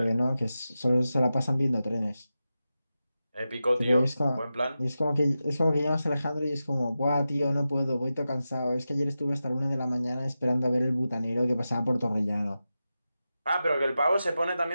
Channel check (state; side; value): inverted; both; correlation -0.92